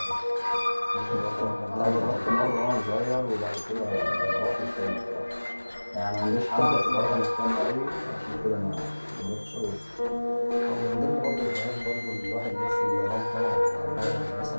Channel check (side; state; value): both; inverted; correlation -1.00